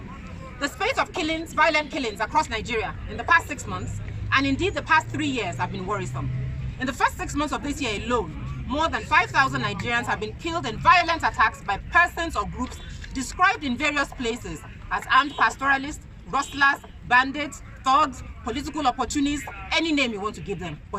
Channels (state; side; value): identical; both; correlation 1.00